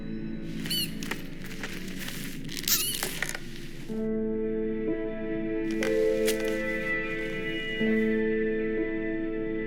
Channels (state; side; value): identical; both; correlation 1.00